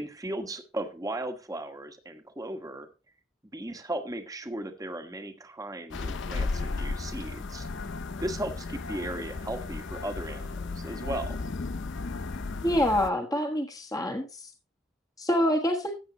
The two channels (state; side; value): normal; both; correlation 0.71